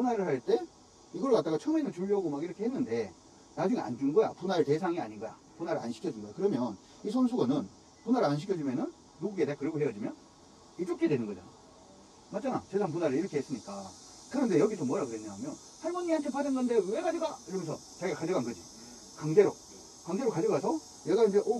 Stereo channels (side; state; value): both; identical; correlation 1.00